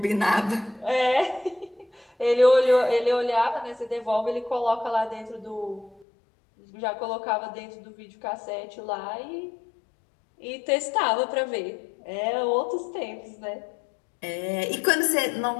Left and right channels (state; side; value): drops out; right; at 6.1 s